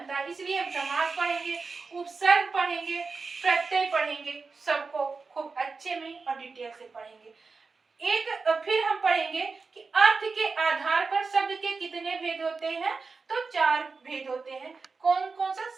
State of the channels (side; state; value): left; quieter; 4.4 dB